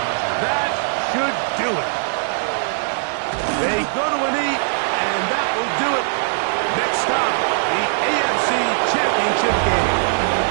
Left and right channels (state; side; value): silent; left; digital silence